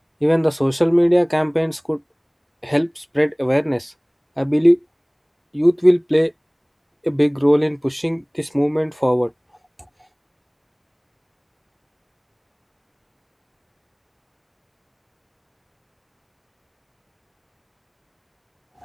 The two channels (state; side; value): identical; both; correlation 1.00